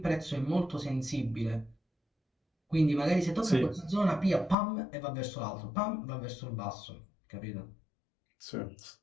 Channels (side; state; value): right; drops out; at 4.5 s